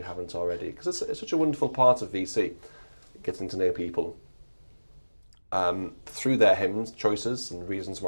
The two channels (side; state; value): both; inverted; correlation -1.00